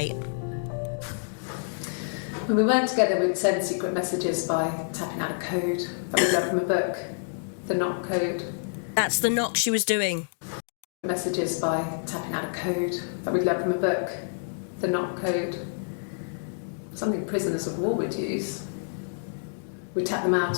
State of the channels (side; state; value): right; silent; digital silence